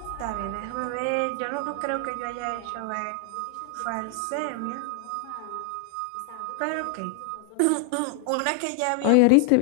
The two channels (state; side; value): different; both; correlation 0.00